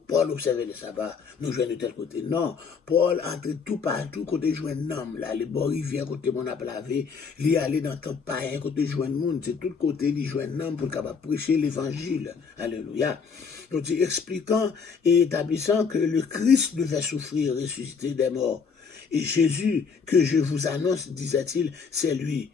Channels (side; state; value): right; quieter; 5.7 dB